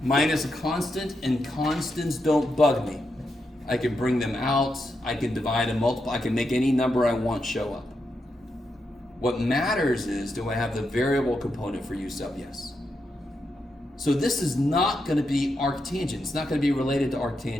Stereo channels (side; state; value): both; normal; correlation 0.84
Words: minus a constant, and constants don't bug me. I can bring them out, I can divide and multiply, I can make any number I want show up. What matters is, do I have the variable component for U sub? Yes. So this is not going to be arctangent. It's not going to be related to